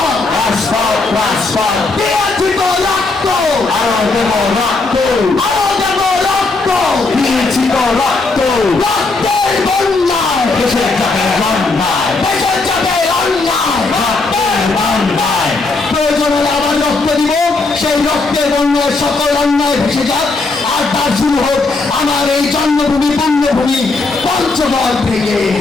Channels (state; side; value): quieter; right; 3.6 dB